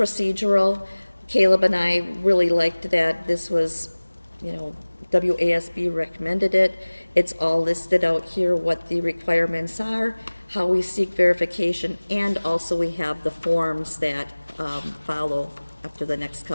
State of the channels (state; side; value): inverted; both; correlation -1.00